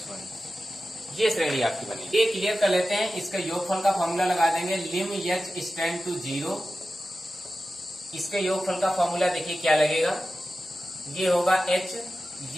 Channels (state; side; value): normal; both; correlation 0.93